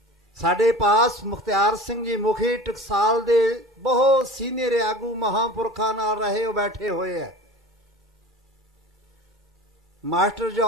ਸਾਡੇ ਪਾਸ ਮੁਖਤਿਆਰ ਸਿੰਘ ਜੀ ਮੁਖੀ ਟਕਸਾਲ ਦੇ ਬਹੁਤ ਸੀਨੀਅਰ ਆਗੂ ਮਹਾਂਪੁਰਖਾਂ ਨਾਲ ਰਹੇ ਉਹ ਬੈਠੇ ਹੋਏ ਹੈ। ਮਾਸਟਰ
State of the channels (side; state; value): both; normal; correlation 0.38